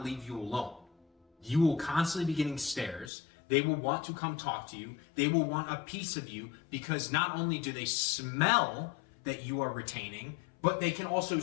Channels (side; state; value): right; drops out; at 3.1 s